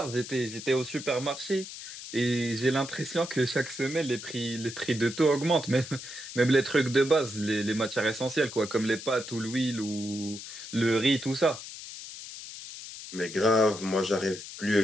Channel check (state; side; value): noise; left; hiss, 11 dB below the sound